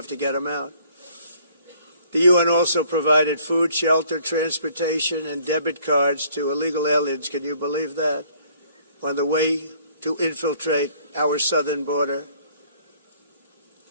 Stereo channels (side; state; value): both; inverted; correlation -0.59